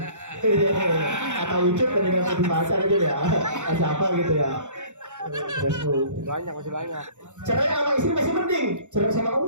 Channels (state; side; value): late; left; 0.85 ms